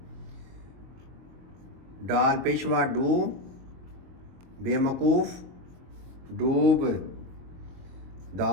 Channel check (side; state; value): left; late; 23 ms